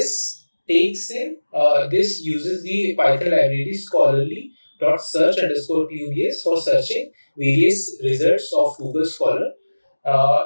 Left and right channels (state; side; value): inverted; both; correlation -1.00